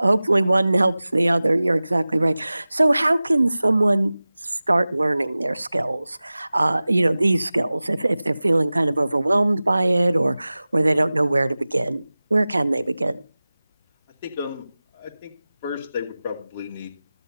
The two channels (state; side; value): inverted; both; correlation -0.97